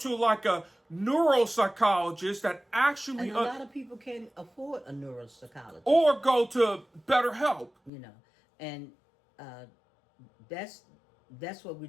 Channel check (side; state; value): right; drops out; at 7.9 s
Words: like a neuropsychologist that actually... And a lot of people can't afford a neuropsychologist. Or go to BetterHelp. You know, and that's what we're